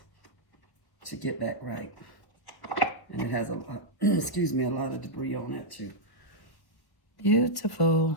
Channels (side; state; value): right; late; 1.2 ms